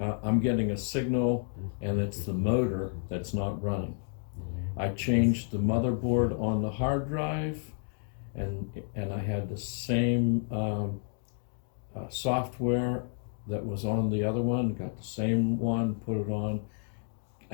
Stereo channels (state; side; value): silent; right; digital silence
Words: I'm getting a signal, and it's the motor that's not running. I changed the motherboard on the hard drive, and I had the same software that was on the other one, got the same one, put it on.